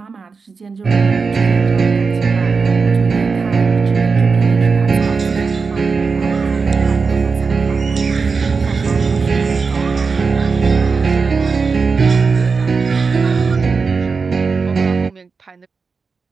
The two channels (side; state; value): left; quieter; 4.9 dB